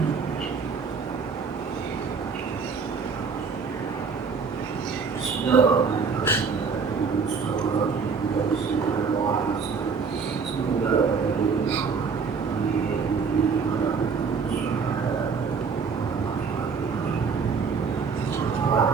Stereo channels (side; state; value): left; quieter; 5.5 dB